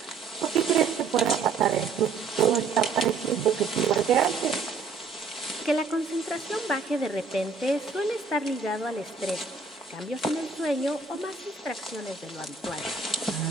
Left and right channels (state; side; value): quieter; left; 4.7 dB